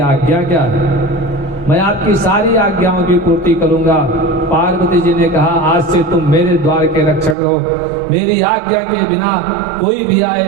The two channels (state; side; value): drops out; left; at 7.4 s